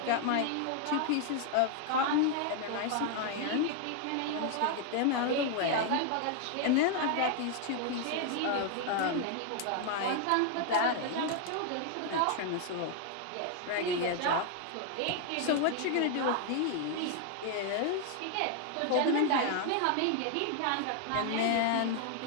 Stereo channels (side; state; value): both; different; correlation 0.00